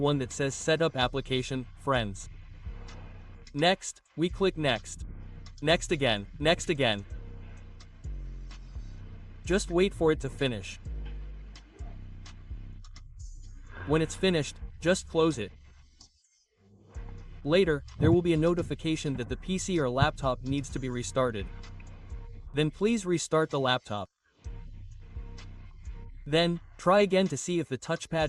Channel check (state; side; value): identical; both; correlation 1.00